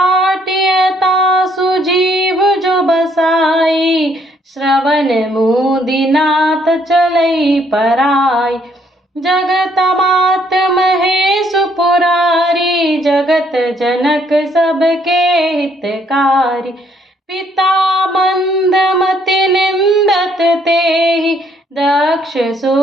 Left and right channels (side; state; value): both; normal; correlation 0.68